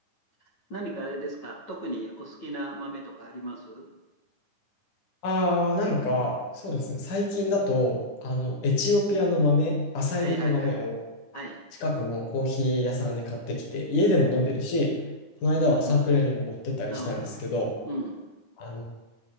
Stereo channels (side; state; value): right; late; 10 ms